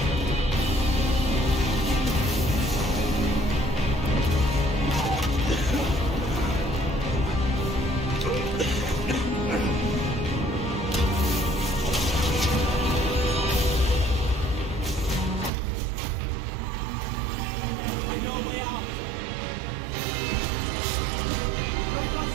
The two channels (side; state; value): left; drops out; at 15.5 s